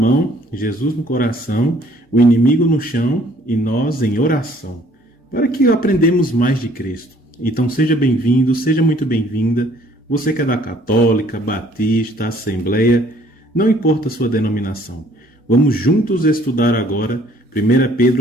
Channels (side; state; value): both; normal; correlation 0.59